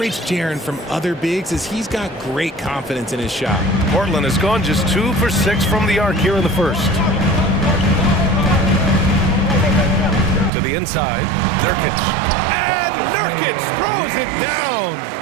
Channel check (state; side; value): drops out; left; at 10.5 s